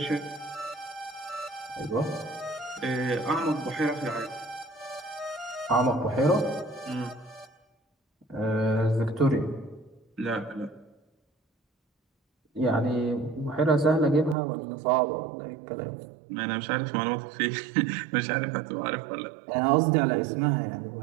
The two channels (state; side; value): drops out; left; at 14.4 s